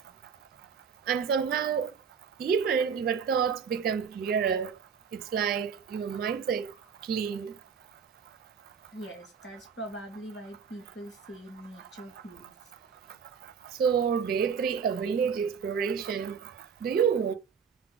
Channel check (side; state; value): left; quieter; 6.5 dB